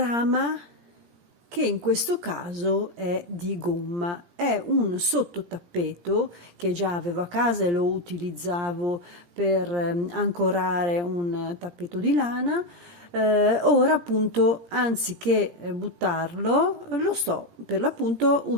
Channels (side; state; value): left; late; 17 ms